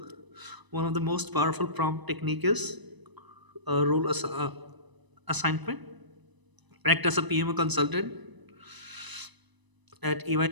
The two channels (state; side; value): late; left; 1.0 ms